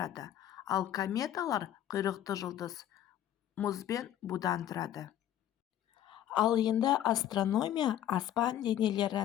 ал кометалар құйрықты жұлдыз мұз бен будан тұрады. Ал енді астрономия аспан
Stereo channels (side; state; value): right; quieter; 11.6 dB